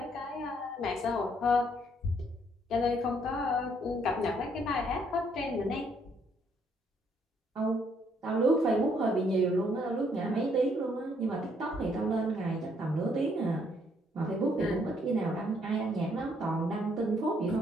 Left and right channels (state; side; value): normal; both; correlation 0.68